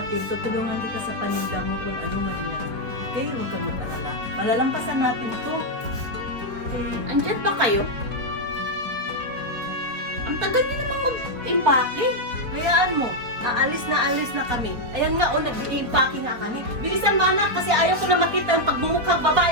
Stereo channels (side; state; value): left; late; 4.2 ms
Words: tutulungan kita sa paninda mo kung ano man yan. Okay? Huwag kang mag-alala. Malalampasan natin to. Okay? Andyan pa kayo? Ang tagal niyo namang mag-impake. Hayaan mo. Alis na kami. Ayan nga, nag-i-impake nga kami. Bilisan mo anak, kasi ayaw ko na makita yung pagmumukhang babae